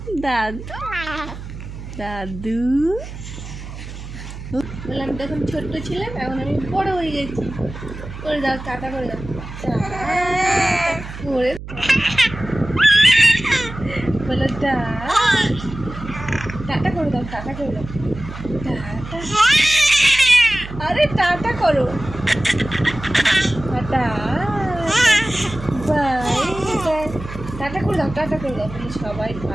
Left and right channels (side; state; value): right; noise; hum, 11 dB below the sound